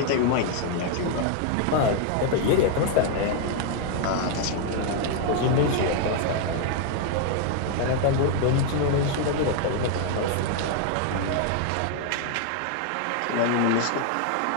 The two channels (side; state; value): both; different; correlation 0.00